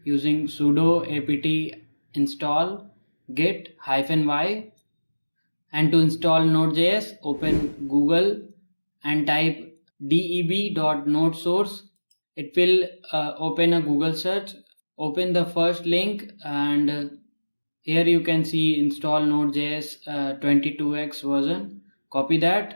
using sudo apt install git -y. And to install Node.js, open Google and type deb.nodesource. It will open a Google search. Open the first link and here you can see install Node.js 22x version. Copy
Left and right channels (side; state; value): both; inverted; correlation -1.00